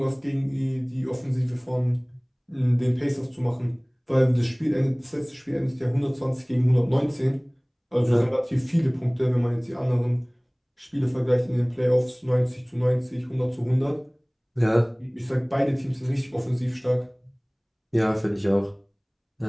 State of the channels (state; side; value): identical; both; correlation 1.00